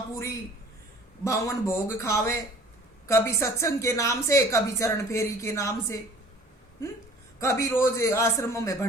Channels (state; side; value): normal; both; correlation 0.49